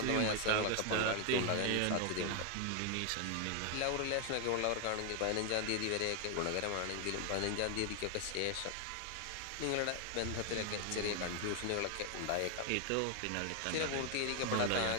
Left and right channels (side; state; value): both; different; correlation 0.01